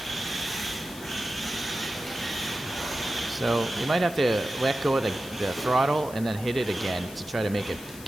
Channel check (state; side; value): noise; left; hiss, 16 dB below the sound